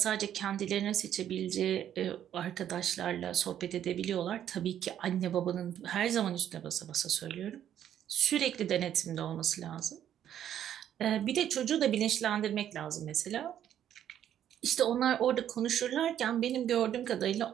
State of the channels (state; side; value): quieter; left; 10.4 dB